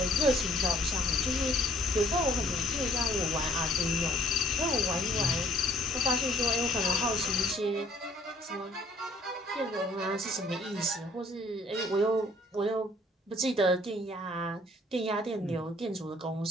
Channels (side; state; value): both; normal; correlation 0.59